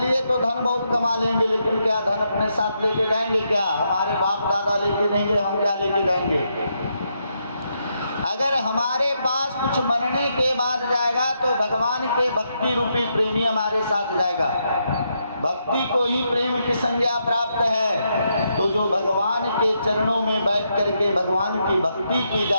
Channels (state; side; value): inverted; both; correlation -0.80